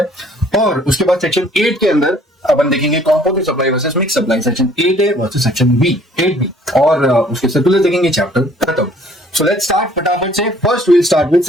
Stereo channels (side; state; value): both; normal; correlation 0.57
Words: और उसके बाद सेक्शन 8 के अंदर अपन देखेंगे composite supply versus mix supply, section 8A versus section 8B, और उसके सर्कुलर देखेंगे, चैप्टर खत्म। सो लेट्स स्टार्ट फटाफट से। First will start with